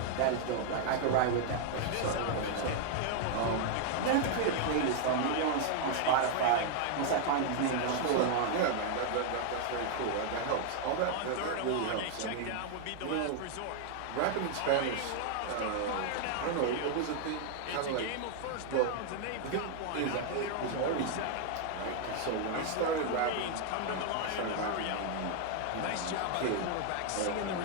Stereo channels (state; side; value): different; both; correlation 0.00